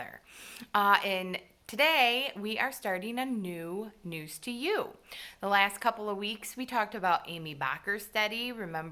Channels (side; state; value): both; identical; correlation 1.00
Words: And today, we are starting a new News-2-You. The last couple of weeks, we talked about Amy Bockersteady.